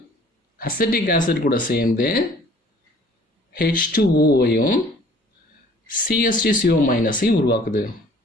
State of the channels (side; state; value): both; normal; correlation 0.54